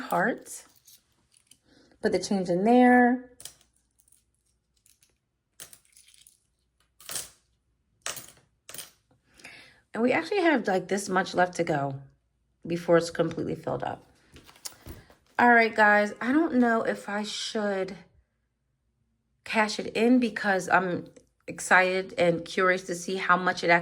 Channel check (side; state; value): both; identical; correlation 1.00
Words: Put the change in there. And we actually have like this much left to go before it's completely filled up. All right, guys, I don't know if I should cash it in because I'm excited and curious to see how much it